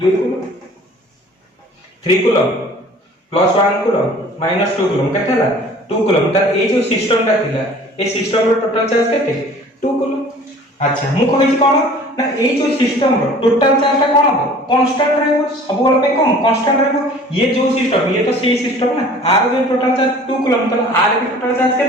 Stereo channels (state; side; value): normal; both; correlation 0.48